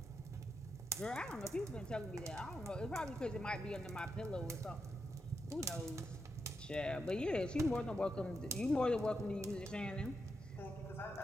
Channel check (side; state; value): both; normal; correlation 0.85